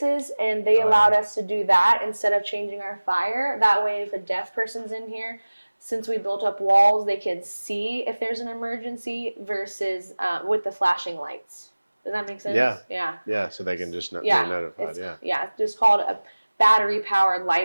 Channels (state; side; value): inverted; both; correlation -1.00